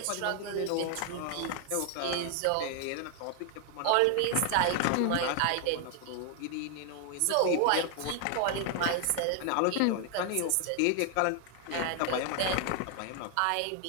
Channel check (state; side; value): different; both; correlation 0.00